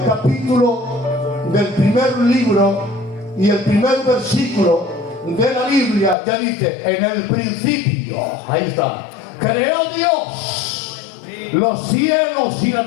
capítulo del primer libro y el primer versículo de la Biblia ya dice: en el principio, ahí está, creó Dios los cielos y la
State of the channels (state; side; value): drops out; right; at 6.2 s